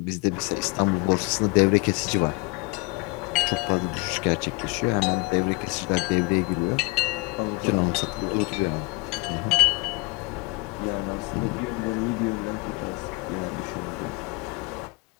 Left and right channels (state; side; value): quieter; right; 25.7 dB